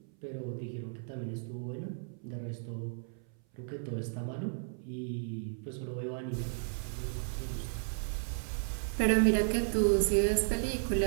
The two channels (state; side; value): silent; left; 55 dB below the other